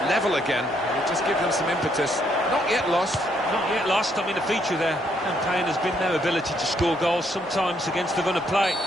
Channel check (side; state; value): both; normal; correlation 0.72